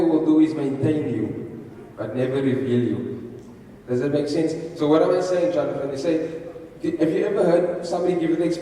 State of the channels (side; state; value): both; identical; correlation 1.00